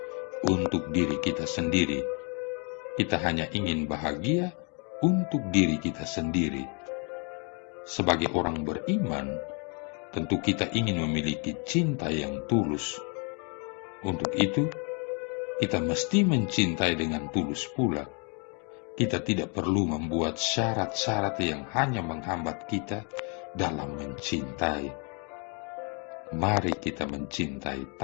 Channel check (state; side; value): quieter; right; 36.0 dB